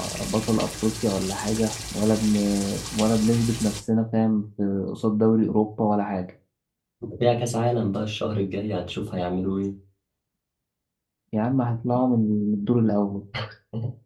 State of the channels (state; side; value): identical; both; correlation 1.00